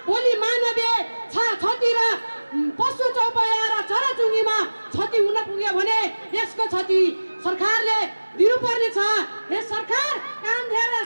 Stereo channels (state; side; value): inverted; both; correlation -1.00